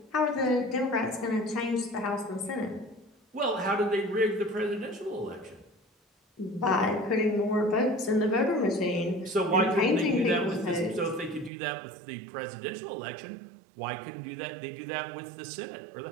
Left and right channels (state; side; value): drops out; left; at 11.5 s